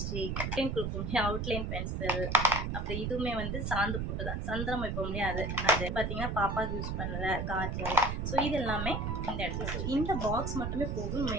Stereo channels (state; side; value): noise; right; rumble, 2 dB below the sound